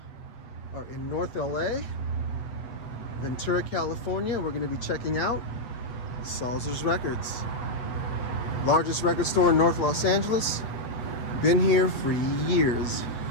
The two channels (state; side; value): late; right; 8.4 ms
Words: are in North LA, Ventura, California. We're going to be checking out Salzer's Records, largest record store in North Los Angeles. Been here for years.